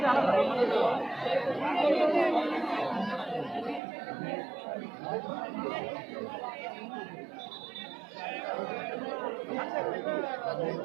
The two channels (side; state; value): left; drops out; at 3.8 s